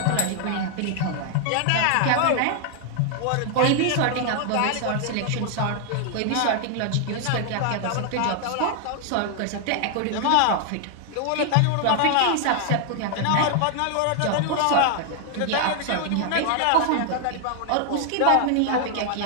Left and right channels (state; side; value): different; both; correlation 0.00